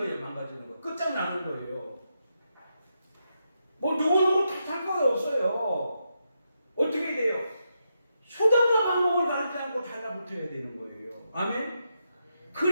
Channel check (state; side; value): inverted; both; correlation -0.83